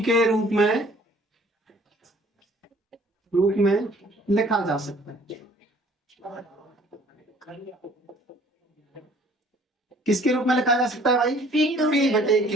के रूप में लिखा जा सकता है। किसके रूप में लिखा जा सकता है भाई,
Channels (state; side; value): normal; both; correlation 0.55